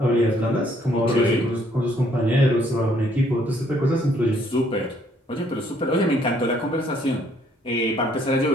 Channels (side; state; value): both; normal; correlation 0.66